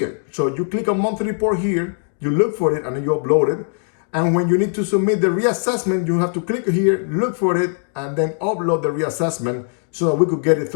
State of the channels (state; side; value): silent; right; digital silence